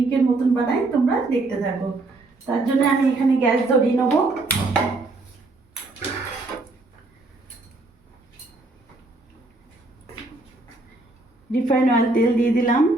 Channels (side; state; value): left; quieter; 3.2 dB